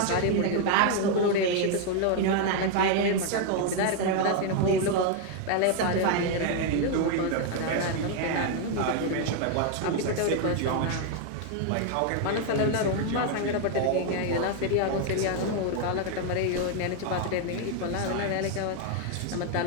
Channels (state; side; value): different; both; correlation 0.01